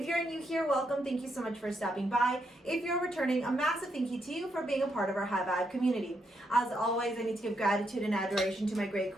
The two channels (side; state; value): both; normal; correlation 0.79